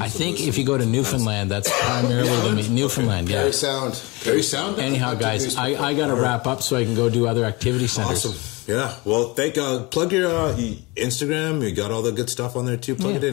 I think if you go to Newfoundland, that's primarily the meat. Newfoundland, yeah. Very sound. Very sound. Anyhow, guys, I got to wrap up so I can go do other activity centers. Awesome. Yeah. Well, plug your Instagram. You got all the good stuff on there too. Plug it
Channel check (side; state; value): right; quieter; 25.1 dB